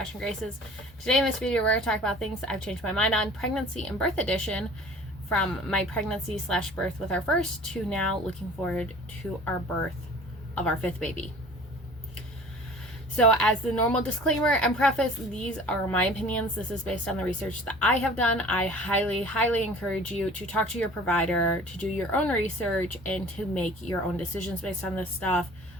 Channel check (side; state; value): both; normal; correlation 0.46